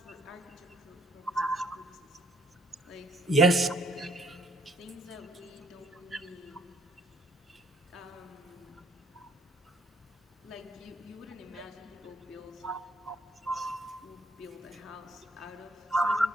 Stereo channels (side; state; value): both; normal; correlation 0.66